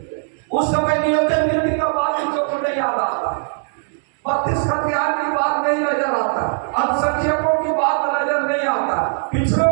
उस समय नियोजन नीति का बात को नहीं याद आता, 32 हथियार की बात नहीं नजर आता, अल्पसंख्यकों की बात नजर नहीं आता,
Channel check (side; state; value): left; silent; digital silence